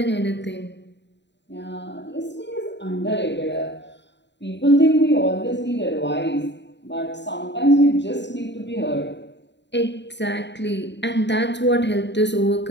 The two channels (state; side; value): late; right; 0.52 ms